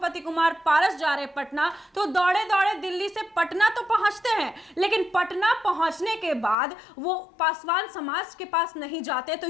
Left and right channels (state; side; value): drops out; right; at 6.6 s